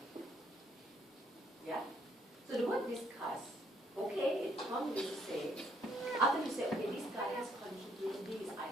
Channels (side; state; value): both; normal; correlation 0.68